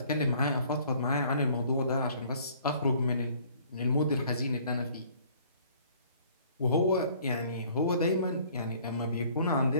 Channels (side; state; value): both; inverted; correlation -0.57